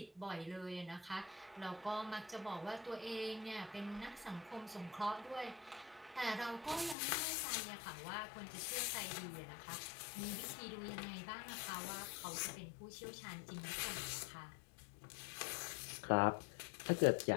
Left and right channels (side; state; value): right; drops out; at 7.0 s